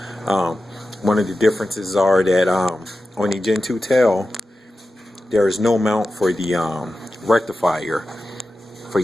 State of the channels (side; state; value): both; normal; correlation 0.93